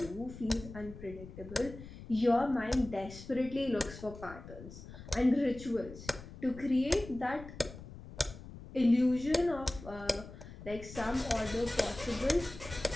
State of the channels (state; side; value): noise; left; rumble, 14 dB below the sound